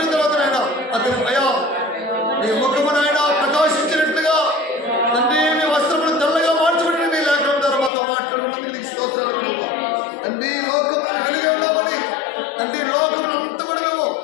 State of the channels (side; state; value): right; drops out; at 7.9 s